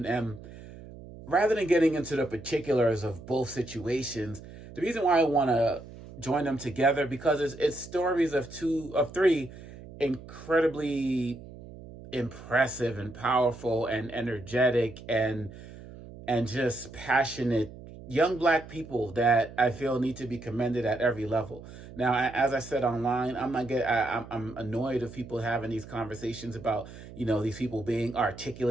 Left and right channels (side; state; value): right; noise; hum, 16 dB below the sound